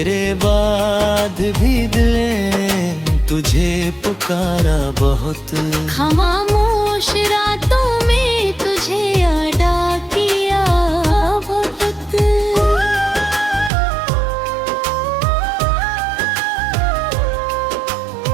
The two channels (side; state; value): left; drops out; at 13.7 s